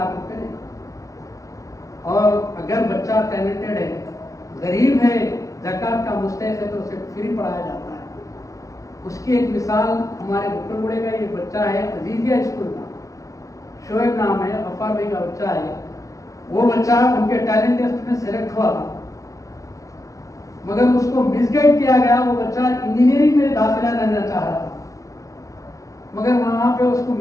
روپے. اور اگر بچہ ٹیلنٹڈ ہے, غریب ہے, زکوٰۃ کا مستحق ہے تو اسے فری پڑھایا جاتا ہے. اس کی ایک مثال ہمارے بکر گڑے کا یہ بچہ ہے عزیزیہ اسکول کا, شعیب نام ہے, غفار بھائی کا بچہ ہے. وہ بچہ ان کے ٹیلنٹ ٹیسٹ میں سلیکٹ ہوا تھا مگر اس کو مس گائیڈ کیا گیا. وہ بچہ انجینئرنگ میں داخلہ لینا چاہ رہا تھا مگر وہاں پہ اس کو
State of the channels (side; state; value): right; late; 0.16 ms